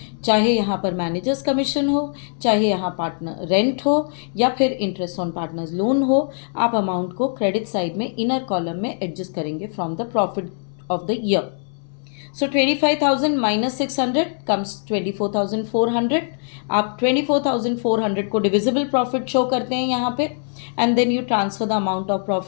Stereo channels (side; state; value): right; silent; 62 dB below the other